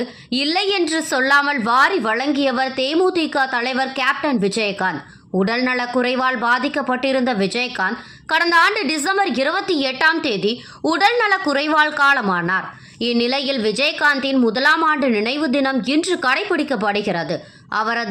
இல்லை என்று சொல்லாமல் வாரி வழங்கியவர் தேமுதிக தலைவர் கேப்டன் விஜயகாந்த். உடல்நல குறைவால் பாதிக்கப்பட்டிருந்த விஜயகாந்த் கடந்த ஆண்டு டிசம்பர் 28 உடல்நல குறைவால் காலமானார். இந்நிலையில் விஜயகாந்தின் முதலாம் ஆண்டு நினைவு தினம் இன்று கடைபிடிக்கப்படுகிறது.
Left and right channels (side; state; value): both; identical; correlation 1.00